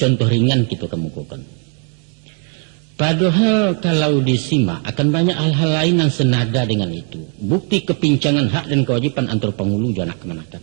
ringan kita kemukakan. Padahal kalau disimak akan banyak hal-hal lain yang senada dengan itu. Bukti kepincangan hak dan kewajiban antara penghulu dan anak kemenatan.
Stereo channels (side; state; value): left; quieter; 37.1 dB